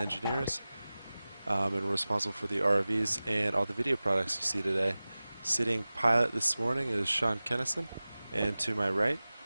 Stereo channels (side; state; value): both; inverted; correlation -0.97